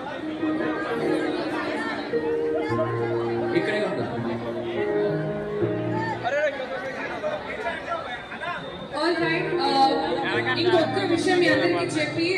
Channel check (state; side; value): identical; both; correlation 1.00